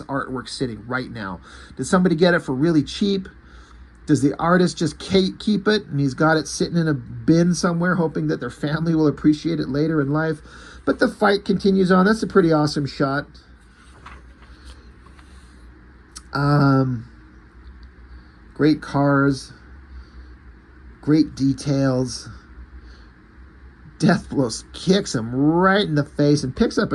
artwork sitting right now? Did somebody get it for really cheap? Does the artist just keep it and he's got it sitting in a bin somewhere hoping that their family will appreciate it later in life? But the fight continues on. That's a pretty awesome shot. Great cars. Great details. Deathblow kicks him right in the face and picks up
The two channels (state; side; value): identical; both; correlation 1.00